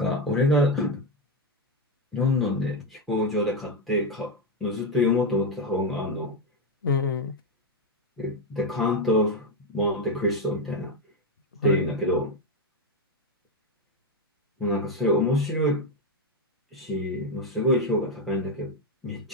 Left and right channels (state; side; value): normal; both; correlation 0.07